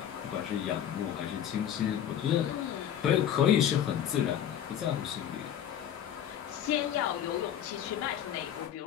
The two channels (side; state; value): right; quieter; 10.0 dB